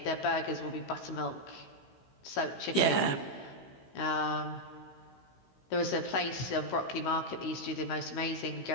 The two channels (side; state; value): right; late; 16 ms